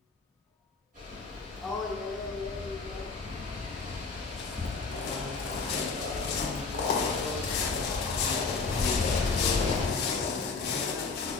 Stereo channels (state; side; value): quieter; right; 4.4 dB